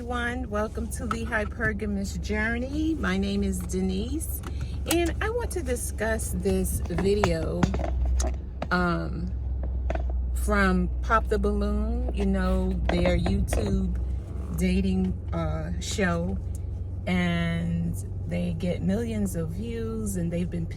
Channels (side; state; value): both; identical; correlation 1.00